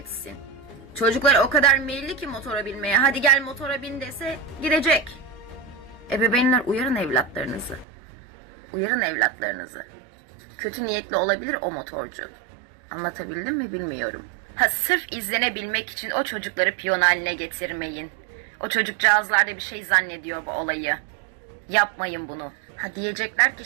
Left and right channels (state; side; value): drops out; left; at 7.9 s